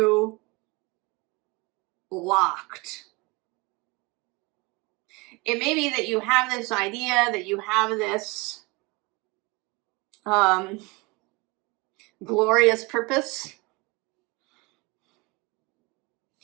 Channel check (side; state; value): left; quieter; 25.9 dB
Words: locked. It may be that you have this idea, that you have this glorious purpose